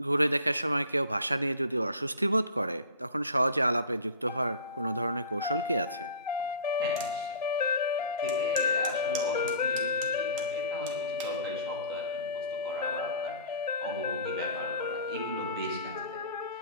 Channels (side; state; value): both; inverted; correlation -0.43